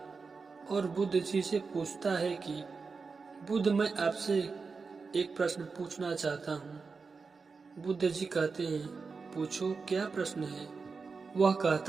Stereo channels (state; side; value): quieter; left; 4.7 dB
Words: और बुद्ध जी से पूछता है कि बुद्ध, मैं आपसे एक प्रश्न पूछना चाहता हूँ। बुद्ध जी कहते हैं, पूछो, क्या प्रश्न है? वह